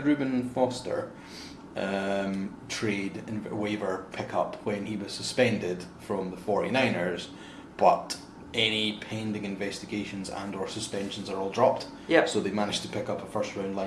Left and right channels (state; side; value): identical; both; correlation 1.00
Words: Reuben Foster trade and waiver pickup when he was suspended from the 49ers, but any pending investigations and or suspensions are all dropped. So they managed to pick up a first round